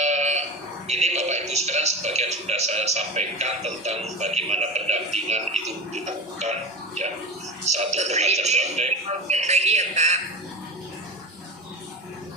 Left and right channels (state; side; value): normal; both; correlation 0.27